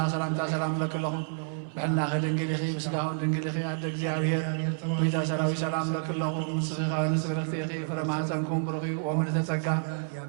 سلام لك لهم بحنا خد انجليخي بسلاهم انجليخي عندك زيارير ويتا سراوي سلام لك لهم صغيرا نسبرتيخي فرما سنكون برغي ومن تتسكى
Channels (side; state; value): left; silent; 58 dB below the other